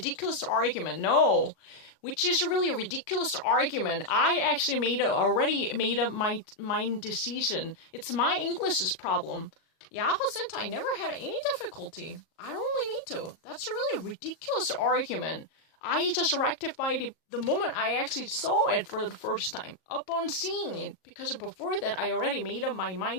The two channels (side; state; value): right; late; 38 ms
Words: argument. No. Which is a really ridiculous argument. I actually already made up my decision. It's my English's problem. Jahrzehnte never had any difficulty. I don't really need to. That's a really ridiculous argument. I just rectified it the moment I actually saw it for the first time. Upon seeing it. Because before that, I already made up my